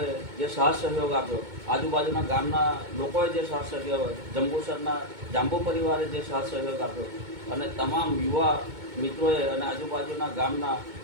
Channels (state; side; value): late; left; 2.2 ms